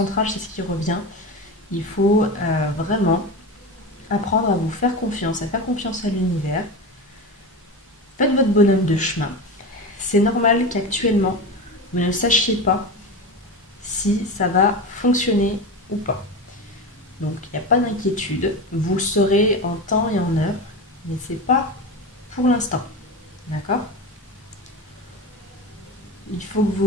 c'est ce qui revient. Il faut vraiment apprendre à vous faire confiance, à faire confiance à l'univers. Faites votre bonhomme de chemin. C'est normal qu'actuellement, vous ne sachiez pas si ça va fonctionner ou pas. Donc, il n'y a pas d'inquiétude. Vous le saurez en temps et en heure, mais ce n'est pas pour l'instant. D'accord ? Il faut que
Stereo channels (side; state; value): both; normal; correlation 0.24